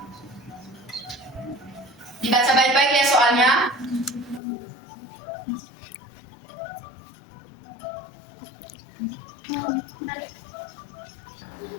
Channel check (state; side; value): drops out; right; at 4.4 s